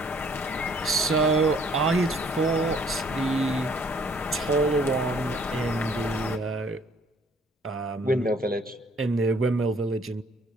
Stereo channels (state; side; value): normal; both; correlation 0.60